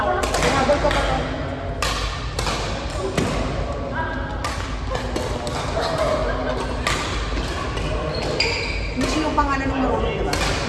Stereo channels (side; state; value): both; identical; correlation 1.00